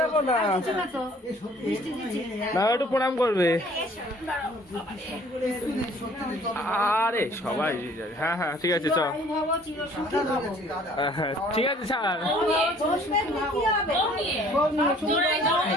দেখো না, না একটু প্রণাম করবে। আরে সবাই, হ্যাঁ হ্যাঁ ঠিক আছে চ, ঠিক আছে স্যার।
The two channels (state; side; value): normal; both; correlation 0.55